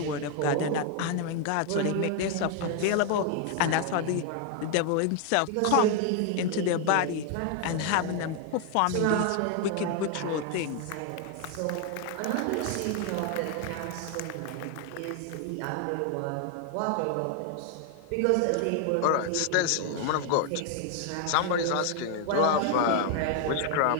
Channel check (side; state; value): both; different; correlation 0.00